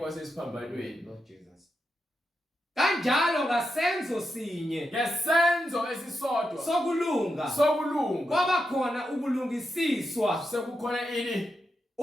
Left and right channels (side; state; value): both; normal; correlation 0.86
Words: Lord Jesus. Kanjalo ngasenzo sinye Ngesenzo esisodwa sokulunga kwaba khona ukulungisiswa sekukhona ini?